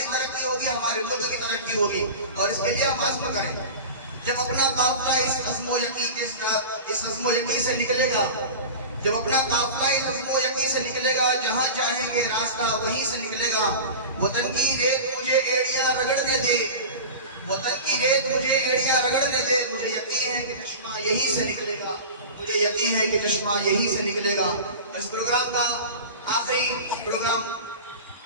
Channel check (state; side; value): inverted; both; correlation -0.32